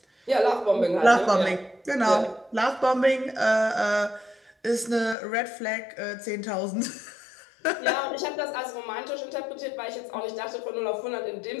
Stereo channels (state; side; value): drops out; right; at 5.2 s